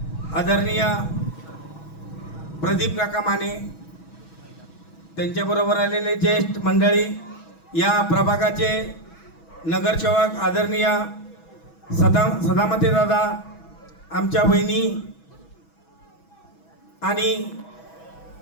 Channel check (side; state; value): right; late; 6.2 ms